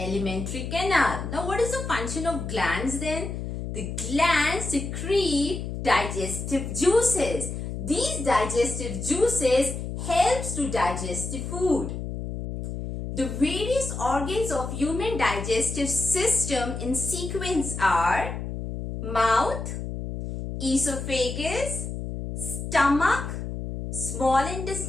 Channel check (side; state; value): left; noise; hum, 6 dB below the sound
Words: canal. Now, what is the function of glands then? The glands secrete digestive juices. These digestive juices helps to digest the food. The various organs of human digestive system in sequence are mouth, esophagus, stomach, small